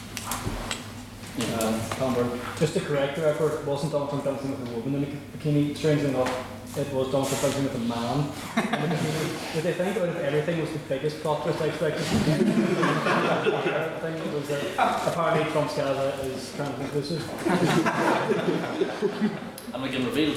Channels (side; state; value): both; identical; correlation 1.00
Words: Just to correct the record, it wasn't Donald Trump dancing with a woman in a bikini. Strangely enough, it was Donald Trump dancing with a man in a bikini. Did they think out of everything was the biggest plot twist I expected? Thing was that apparently Trump's Gaza is trans inclusive. And we can reveal